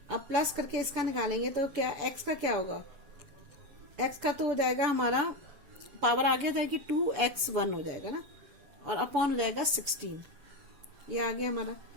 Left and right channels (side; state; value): left; late; 7.0 ms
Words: अब प्लस करके इसका निकालेंगे तो क्या एक्स का क्या होगा, एक्स का तो हो जाएगा हमारा पावर आगे जाएगी 2x1 हो जाएगा ना, और अपॉन हो जाएगा 16, ये आ गया हमारा।